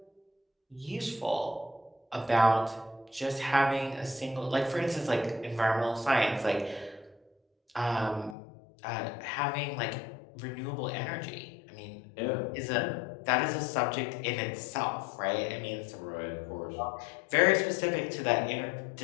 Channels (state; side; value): drops out; right; at 8.3 s